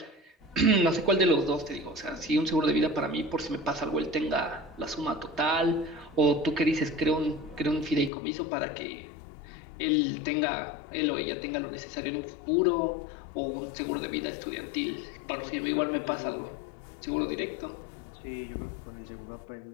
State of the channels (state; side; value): drops out; right; at 8.1 s